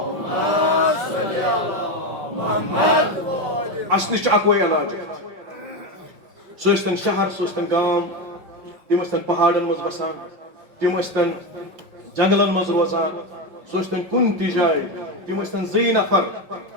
وسلم اصل اکوے علاج سہ ٲسۍتن شہر سہ ٲسۍتن گام تم ٲسۍتن پہاڑن مز بسان تم ٲسۍتن جنگلن مز روزان سہ ٲسۍتن کُنہِ تہِ جایہِ تم ٲسۍتن زٕے نفر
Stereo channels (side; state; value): left; late; 5.4 ms